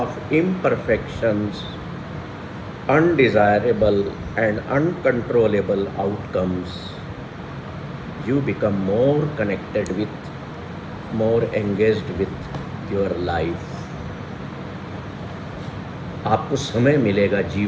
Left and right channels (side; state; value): both; identical; correlation 1.00